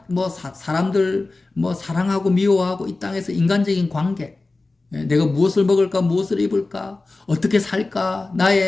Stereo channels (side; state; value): right; quieter; 3.3 dB